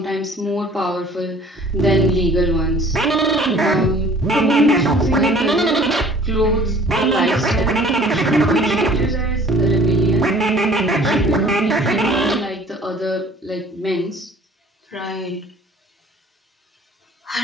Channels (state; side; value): normal; both; correlation 0.51